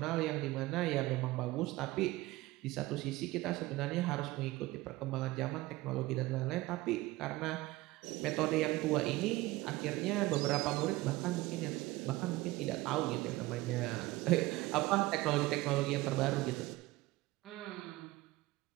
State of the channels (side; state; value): left; quieter; 19.1 dB